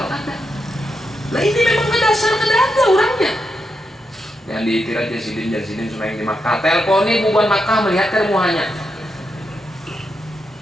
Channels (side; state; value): both; normal; correlation 0.84